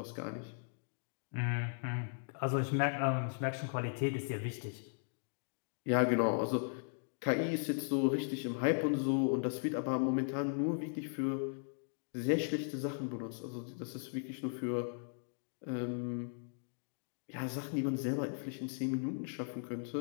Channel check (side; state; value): right; silent; digital silence